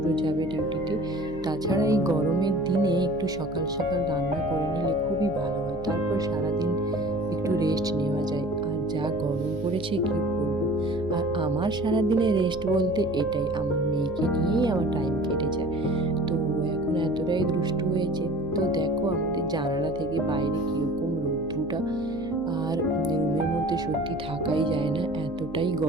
যাবে ডিউটিতে। তাছাড়া এই গরমের দিনে একটু সকাল সকাল রান্না করে নিলে খুবই ভালো হয়, তারপর সারাদিন একটু রেস্ট নেওয়া যায়। আর যা গরম পড়েছে কি বলবো। আর আমার সারাদিনে রেস্ট বলতে এটাই, আমার মেয়েকে নিয়েই আমার টাইম কেটে যায়। তো এখন এতটাই দুষ্টু হয়েছে। তো দেখো আমাদের জানালা থেকে বাইরে কীরকম রৌদ্রটা, আর রুমের মধ্যে সত্যি থাকাই যায় না, এতটাই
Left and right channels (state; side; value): noise; right; hum, 17 dB below the sound